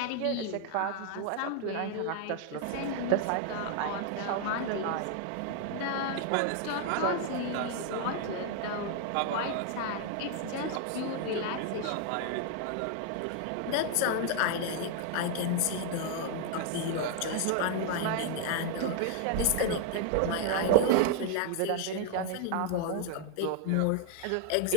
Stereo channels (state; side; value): different; both; correlation 0.00